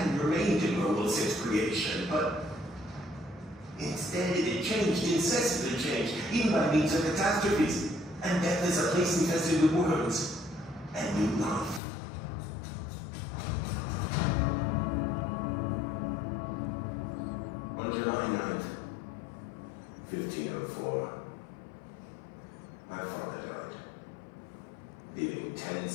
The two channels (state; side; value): drops out; right; at 11.8 s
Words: remained in World since creation, but instead it had changed, incessantly changed, even by means of catastrophes, and death is a place infested with worms, and new life. On July 9th, 1504, my father died, leaving 10